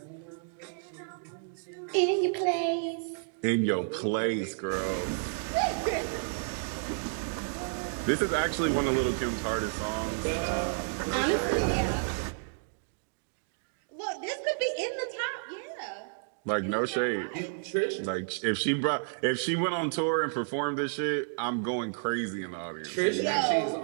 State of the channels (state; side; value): silent; left; digital silence